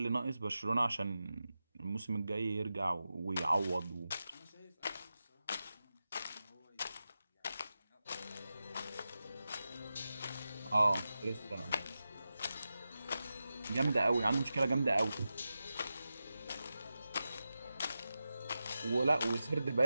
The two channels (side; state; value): both; inverted; correlation -0.92